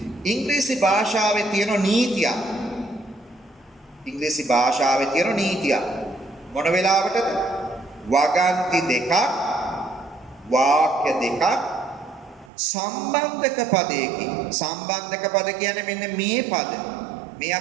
ඉංග්‍රීසි භාෂාවේ තියෙන නීතියක්. ඉංග්‍රීසි භාෂාවේ තියෙන නීතියක්. මොන වෙලාවටද? වගන්ති දෙකක් වාක්‍ය දෙකක් සම්බන්ධක පදයකින්. සම්බන්ධක පද කියන්නේ මෙන්න මේ පද. මේ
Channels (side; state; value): left; drops out; at 12.5 s